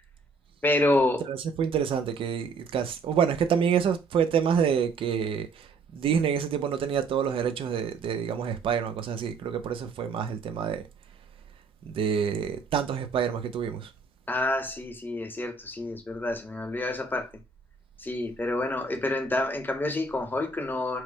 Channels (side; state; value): left; quieter; 3.6 dB